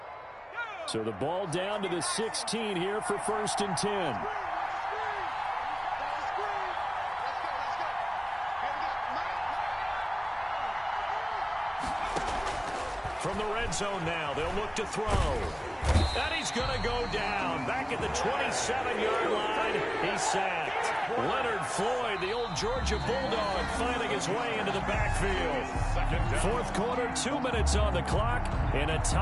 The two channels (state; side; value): identical; both; correlation 1.00